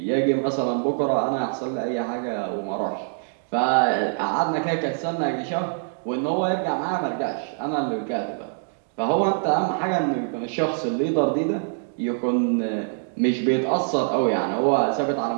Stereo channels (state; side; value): silent; left; digital silence